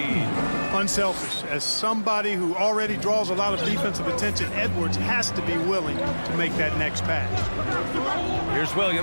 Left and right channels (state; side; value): inverted; both; correlation -1.00